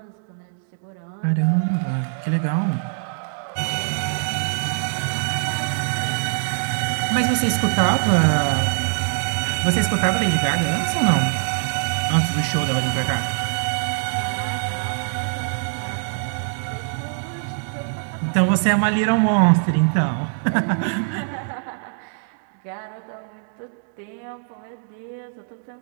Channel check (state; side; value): silent; left; 63 dB below the other